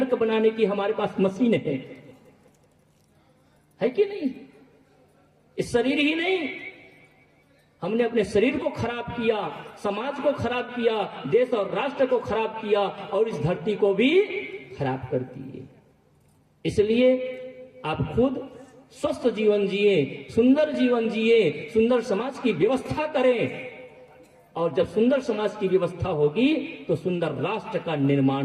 बनाने की हमारे पास मशीन है कि नहीं। इस शरीर ही नहीं, हमने अपने शरीर को खराब किया, समाज को खराब किया, देश और राष्ट्र को खराब किया और इस धरती को भी खराब कर दिए। इसलिए आप खुद स्वस्थ जीवन जिए, सुंदर जीवन जिए, सुंदर समाज की व्यवस्था करें, और जब सुंदर समाज की व्यवस्था होगी तो सुंदर राष्ट्र का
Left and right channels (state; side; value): identical; both; correlation 1.00